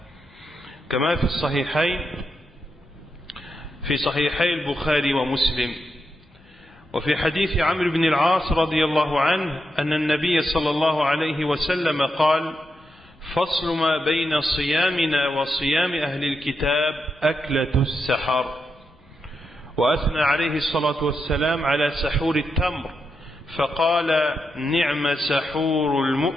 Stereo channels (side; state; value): both; normal; correlation 0.85